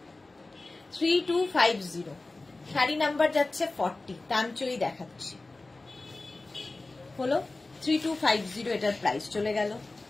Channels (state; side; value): quieter; right; 3.2 dB